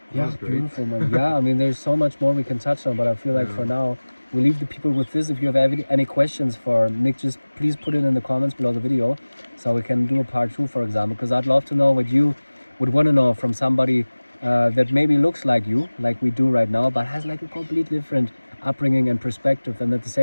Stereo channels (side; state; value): both; inverted; correlation -1.00